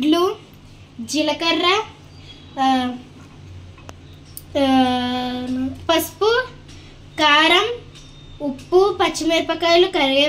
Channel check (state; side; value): identical; both; correlation 1.00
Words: జీలకర్ర, పసుపు, కారం, ఉప్పు, పచ్చిమిరపకాయలు,